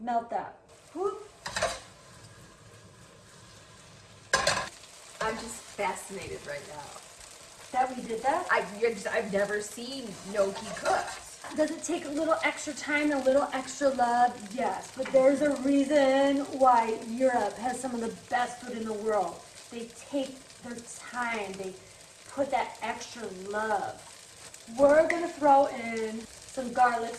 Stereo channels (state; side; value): identical; both; correlation 1.00